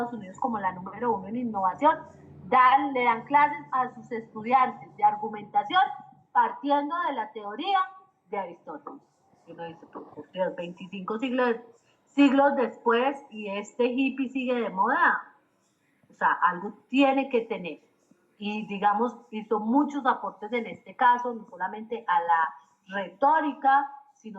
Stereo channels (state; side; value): identical; both; correlation 1.00